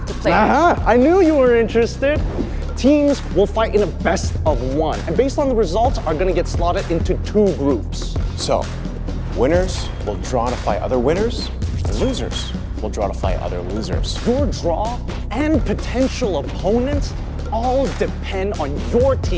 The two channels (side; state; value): both; identical; correlation 1.00